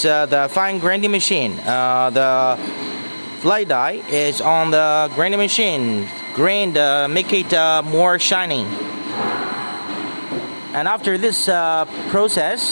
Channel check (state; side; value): inverted; both; correlation -1.00